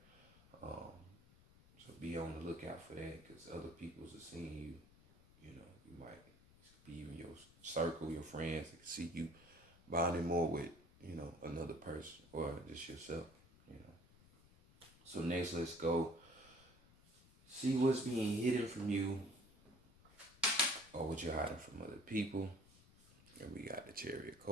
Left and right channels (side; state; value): left; noise; rumble, 25 dB below the sound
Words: Um, so be on the lookout for that, because other people's are seeing you. You know, you might be even your circle, your friends that can see you bonding more with, you know, another person or just yourself, you know. So next, let's go see what's being hidden from you or what you're hiding from other people. And we got the Chariot